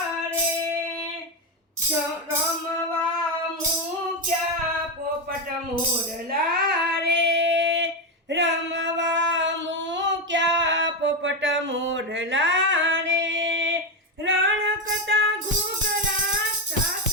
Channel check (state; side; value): normal; both; correlation 0.10